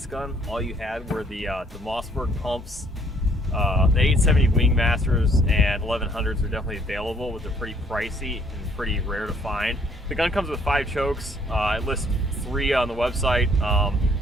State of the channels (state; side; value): normal; both; correlation 0.63